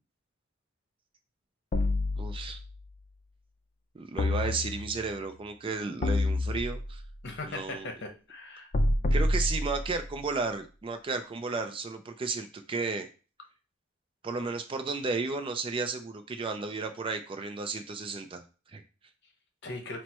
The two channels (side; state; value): both; normal; correlation 0.62